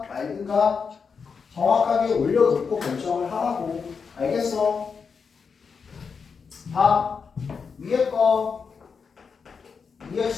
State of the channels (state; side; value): quieter; right; 5.7 dB